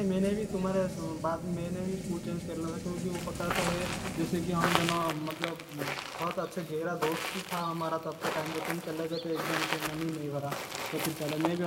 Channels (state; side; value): identical; both; correlation 1.00